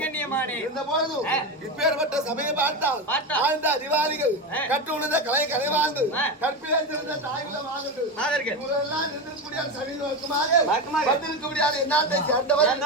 இருந்த போதும் இப்பேற்பட்ட சமயம் பார்த்தால் வாழ்ந்த அதிகாரிகள் கற்றுணர்ந்த கலை கலைவாழ்ந்து கற்பிலே சிறந்த தாய்குல மாதர்கள் இவரெல்லாம் நின்றிருக்கக்கூடிய சமீபமாக வந்திருக்கக்கூடிய என்னாட்டை சேர்ந்தவர்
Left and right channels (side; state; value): both; normal; correlation 0.17